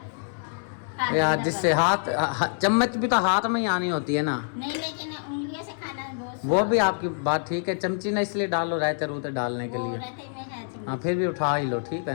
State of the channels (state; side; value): silent; right; 61 dB below the other